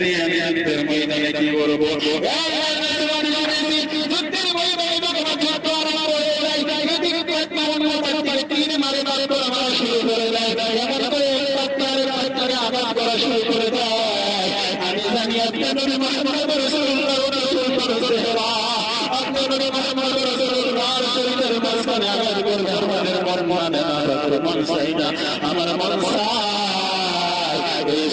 নিয়ে আমি যুদ্ধের ময়দানে কি করবো যুদ্ধের ময়দানে যখন যুদ্ধ আরম্ভ হয়ে যায় তিন মারে মারে করে মারা শুরু করে দেয় এমন করে পাত্তারে আঘাত করা শুরু করে দেয় আমি জানি আপনি নবী মুহাম্মদ রাসূলুল্লাহ আপনি নবী মুহাম্মদ রাসূলুল্লাহর শরীরের মাঝখানে আঘাত করবে আমাদের মন চাই না আমার মন চাই এই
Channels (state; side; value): identical; both; correlation 1.00